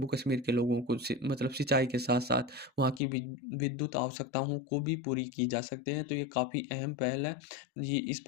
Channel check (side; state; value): right; drops out; at 3.0 s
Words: कश्मीर के लोगों को मतलब सिंचाई के साथ साथ वहाँ की विद्युत आवश्यकताओं को भी पूरी की जा सकते हैं। तो ये काफ़ी अहम पहल है। ये इस